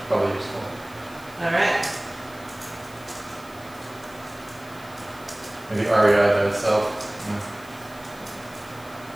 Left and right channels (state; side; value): noise; left; hiss, 22 dB below the sound